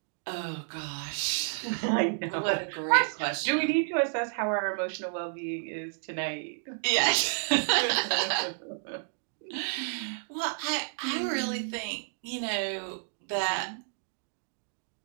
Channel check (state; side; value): silent; left; digital silence